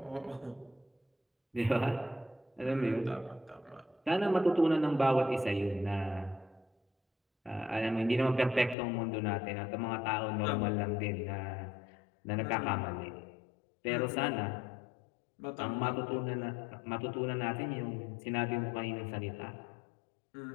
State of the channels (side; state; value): right; drops out; at 8.8 s